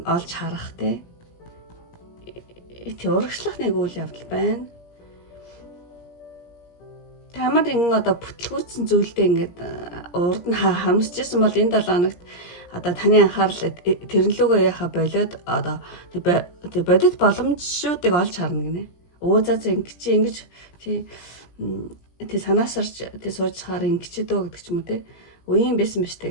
олж харах те урагшлах нэг үйл явдал байна. Тамар ингэ одоо бүтлгүүцсэн зүйлдээ ингээд урд нь харамсчихсан бол энэ 7 хоногт одоо таны анхаарал тэрнлүүгээ яхаа болоод одоо тэг бодит боломжуудыг олж харна гинэ. За ингэж тий санаасарч тий сууж хаар ингэж дөө гэдэг ч юм уу тий. Үеийн байсан биш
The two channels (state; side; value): late; right; 17 ms